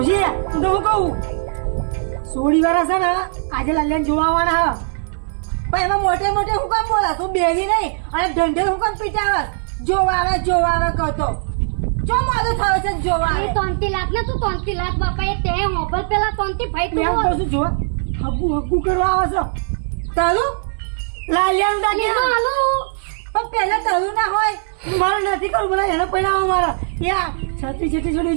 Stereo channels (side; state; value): left; silent; digital silence